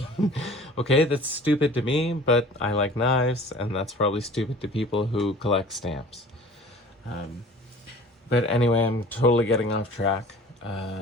Okay, that's stupid to me, but I like knives, and that's probably stupid to people who collect stamps. But anyway, I'm totally getting off track.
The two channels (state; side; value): normal; both; correlation 0.46